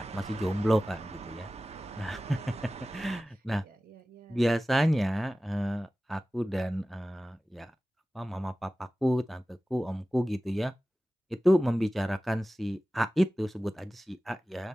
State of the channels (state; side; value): normal; both; correlation 0.96